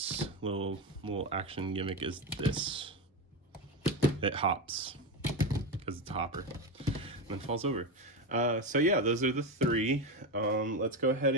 little action gimmick is this. It hops because it's a hopper and then falls over. So yeah, those are the three. Let's go ahead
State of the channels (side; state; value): both; normal; correlation 0.15